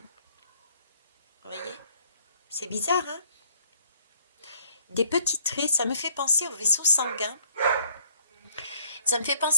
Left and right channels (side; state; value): both; inverted; correlation -0.59